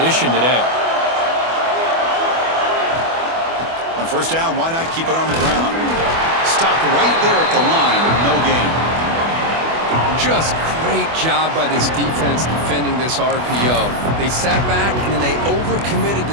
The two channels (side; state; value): left; late; 24 ms